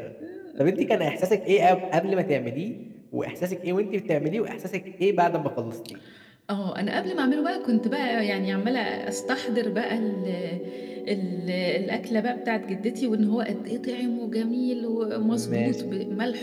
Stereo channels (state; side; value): identical; both; correlation 1.00